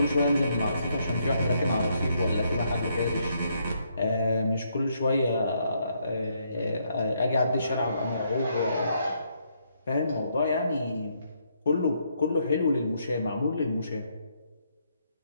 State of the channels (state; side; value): inverted; both; correlation -0.74